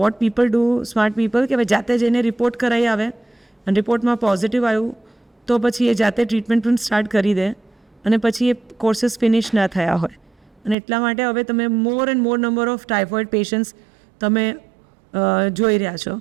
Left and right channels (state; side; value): drops out; left; at 10.8 s